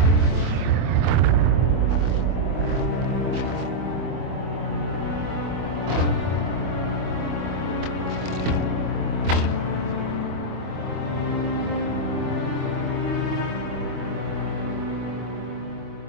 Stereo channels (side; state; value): left; late; 25 ms